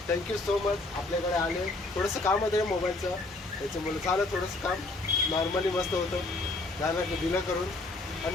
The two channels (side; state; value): right; quieter; 3.0 dB